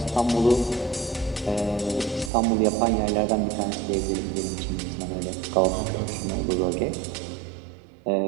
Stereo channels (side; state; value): left; drops out; at 2.3 s